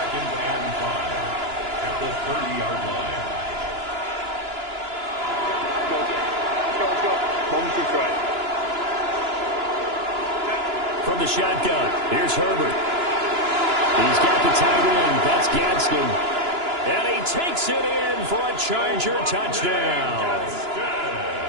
and 5 at the 30-yard line. Let's go. Moment to try. From the shotgun, here's Herbert. He's got the tight end. That's Gadsden. And he takes it in for a Charger touchdown.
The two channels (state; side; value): late; left; 2.9 ms